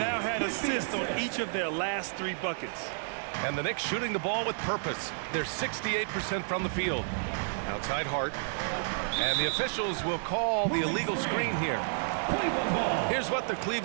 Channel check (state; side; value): silent; left; digital silence